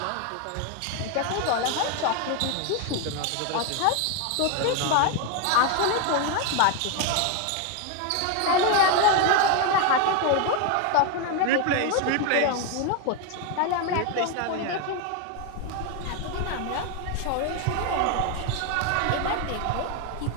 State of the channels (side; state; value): both; different; correlation 0.01